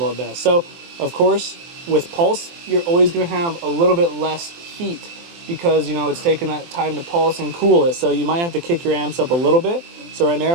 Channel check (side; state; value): left; late; 23 ms